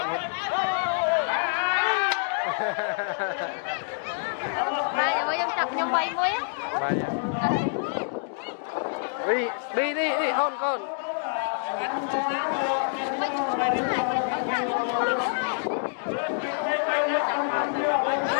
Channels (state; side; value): silent; right; digital silence